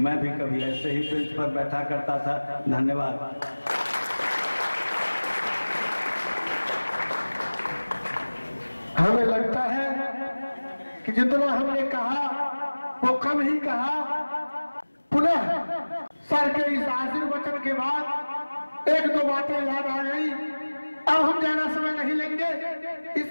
भी कभी ऐसे ही बेंच पर बैठा करता था। धन्यवाद। हमें लगता है कि जितना हमने कहा वो कम ही कहा। पुनः सर के इस आशीर्वचन के बाद एक दो बातें याद आ गई। अब हम ज्यादा समय नहीं लेंगे,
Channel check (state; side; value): inverted; both; correlation -1.00